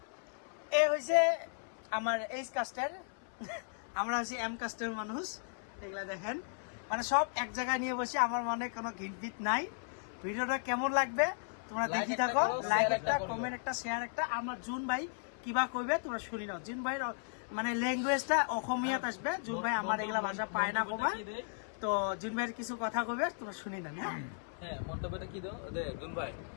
এ হয়েছে আমার এইচ কাস্টের, আমরা হচ্ছে এম কাস্টের মানুষ। এগুলা দেখেন, মানে সব এক জায়গায় নিয়ে বসে। আমার মনে কোনো ঘিট নাই। ভিডিওটা কেমন লাগবে তোমরা দেখি থাকো। লাইক একটা, কমেন্ট একটা, শেয়ার একটা। আমার জুন ভাই কিবা কইবে তোমরা শুনি নাও। জুন ভাই মানে ল্যাঙ্গুয়েজটা অসমীয়াত আসবে। জুন ভাই আমার এগুলা ভাষা পায় না কবা, তো জুন ভাইয়ের কিছু কথা কইবে তোমরা শুনি না। হ্যাঁ, মন্তব্যটা কি দাও জুন ভাই?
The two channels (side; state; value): right; silent; 54 dB below the other